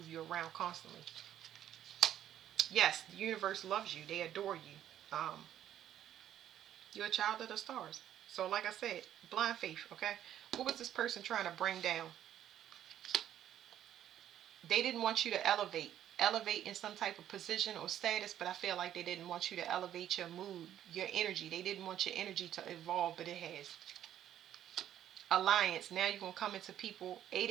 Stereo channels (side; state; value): left; quieter; 11.1 dB